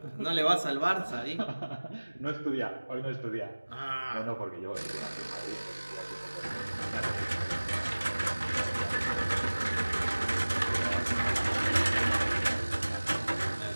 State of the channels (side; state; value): both; inverted; correlation -1.00